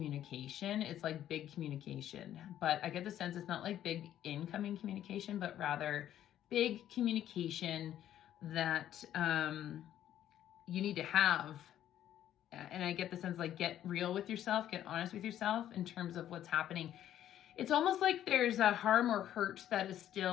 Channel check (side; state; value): right; quieter; 11.5 dB